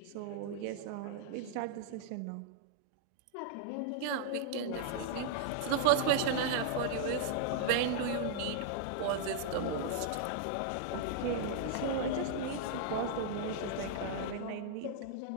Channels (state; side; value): different; both; correlation -0.01